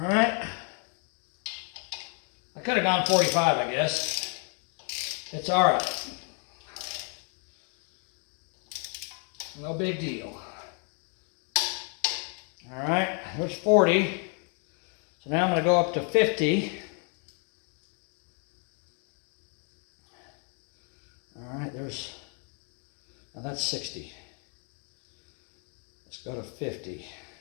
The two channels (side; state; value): right; quieter; 39.8 dB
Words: right. I could have gone 45, I guess. It's all right. No big deal. All right, there's 40. So now I'm going to go up to 50. All right, now that's 60. Let's go to 50.